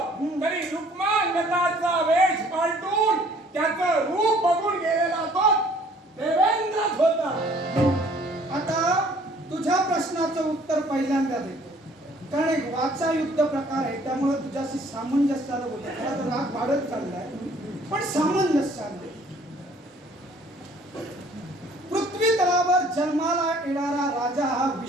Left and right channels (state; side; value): normal; both; correlation 0.57